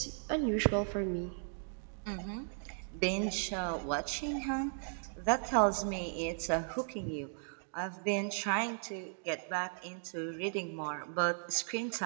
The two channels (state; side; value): silent; left; digital silence